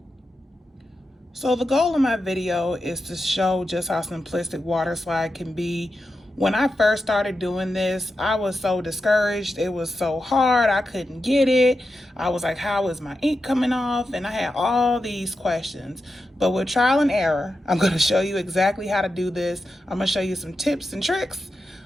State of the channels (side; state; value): both; normal; correlation 0.89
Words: So the goal of my video is to show just how simplistic water slide can be. When I first started doing this, I was so discouraged. It was so hard. I couldn't get it. I was like, how is my ink coming off? And I had all these questions. But with trial and error, I'm going to show you exactly how to do this. I'm going to show you some tips and tricks